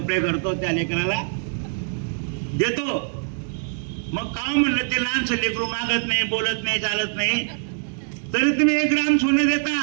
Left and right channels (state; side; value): silent; left; digital silence